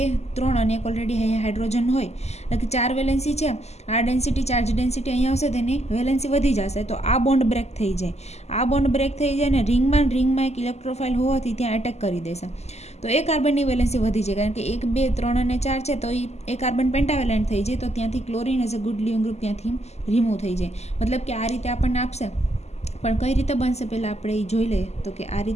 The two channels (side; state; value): right; late; 0.32 ms